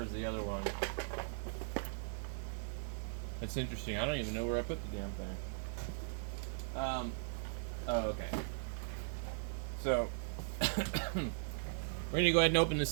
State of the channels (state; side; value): silent; left; 52 dB below the other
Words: the other one? That's interesting. I don't even know where I put the damn thing. Oh, okay. So, we're gonna go ahead and open